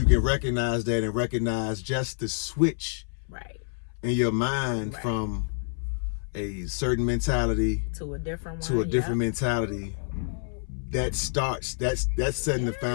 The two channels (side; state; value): right; silent; 60 dB below the other